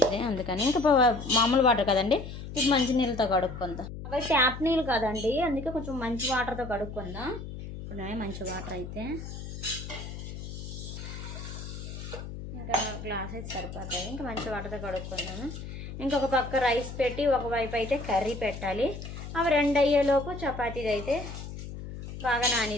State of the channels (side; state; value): left; noise; hum, 9 dB below the sound